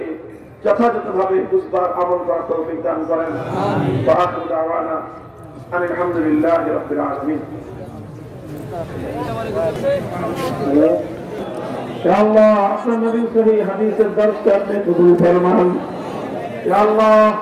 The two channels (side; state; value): both; identical; correlation 1.00